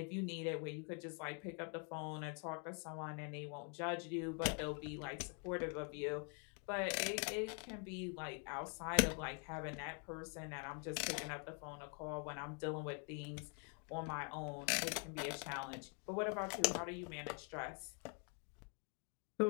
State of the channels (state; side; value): quieter; right; 38.2 dB